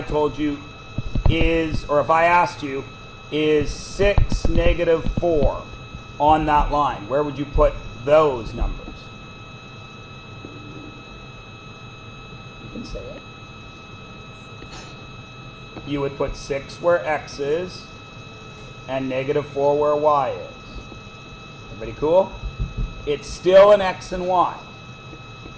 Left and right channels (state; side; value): identical; both; correlation 1.00